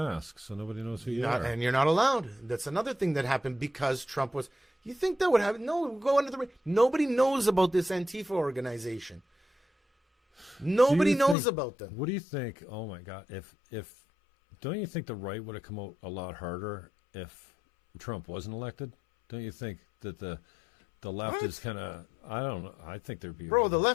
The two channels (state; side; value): drops out; right; at 11.4 s